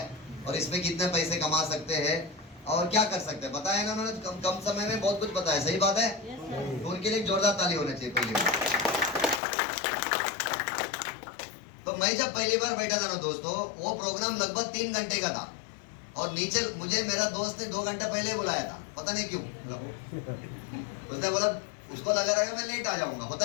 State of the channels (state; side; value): drops out; right; at 9.4 s